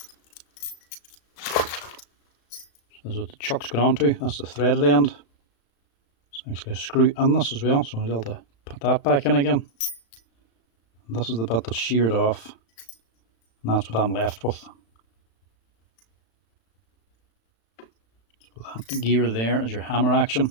This is what the chuck's gone onto. That's the threaded end. There's actually a screw in this as well, so I'll be able to put that back in again. And this is the bit that's sheared off, and that's what I'm left with. So that gear there is your hammer action.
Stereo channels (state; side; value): late; right; 35 ms